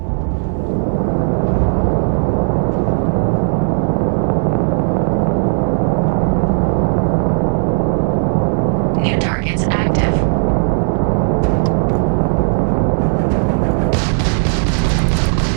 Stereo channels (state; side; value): silent; left; digital silence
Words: New targets active.